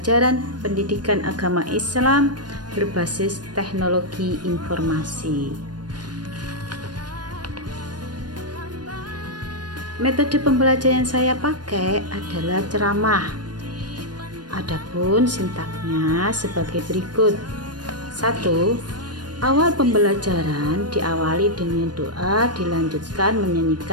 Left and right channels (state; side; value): late; left; 0.70 ms